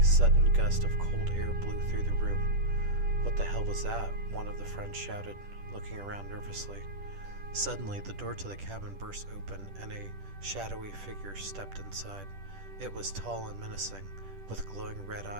sudden gust of cold air blew through the room. "What the hell was that?" one of the friends shouted, looking around nervously. Suddenly, the door to the cabin burst open, and a shadowy figure stepped inside. It was tall and menacing, with glowing red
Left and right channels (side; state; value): left; late; 10 ms